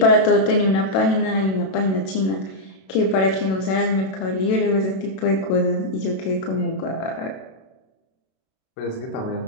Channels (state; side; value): late; right; 32 ms